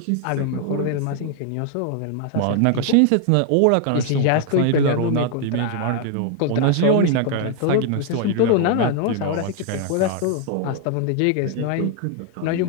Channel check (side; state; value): both; different; correlation 0.00